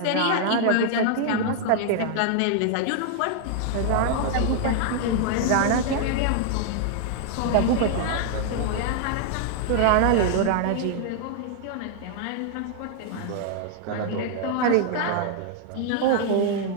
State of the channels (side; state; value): both; different; correlation 0.00